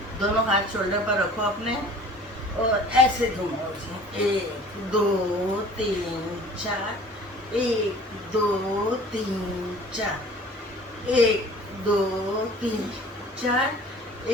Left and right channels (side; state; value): both; normal; correlation 0.47